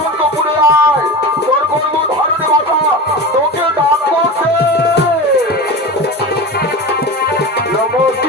আয় তোর গর্ব ধারণে মাথা তোকে ডাক করছে নমো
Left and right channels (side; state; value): both; normal; correlation 0.28